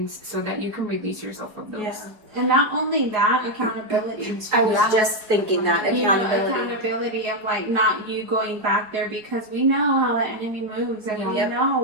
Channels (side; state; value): left; late; 4.7 ms